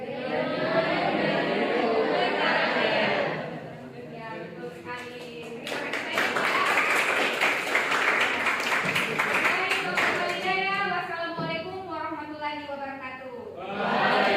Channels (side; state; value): both; identical; correlation 1.00